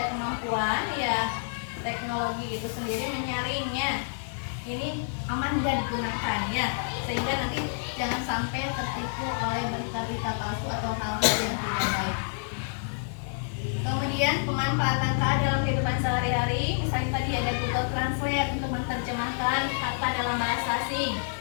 kemampuan ya, teknologi itu sendiri menyaringnya ini aman dan digunakan ya, sehingga nanti jangan sampai tertipu oleh berita-berita palsu atau hal-hal yang tidak baik. Kemudian pemanfaatan KA dalam kehidupan sehari-hari, misalnya tadi ada Google Translate untuk menerjemahkan kata dalam bahasa asing,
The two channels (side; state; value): right; silent; digital silence